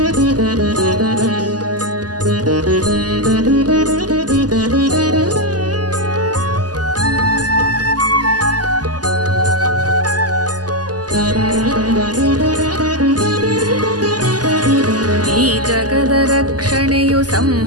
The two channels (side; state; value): left; late; 0.68 ms